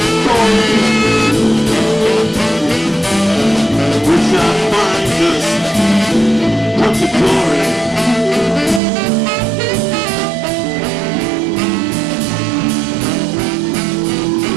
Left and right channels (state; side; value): drops out; left; at 8.8 s